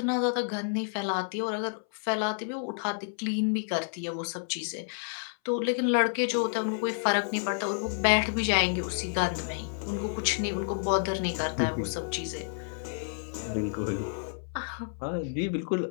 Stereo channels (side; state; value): right; silent; 58 dB below the other